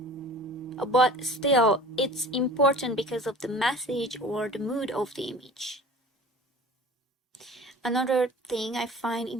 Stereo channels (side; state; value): both; normal; correlation 0.42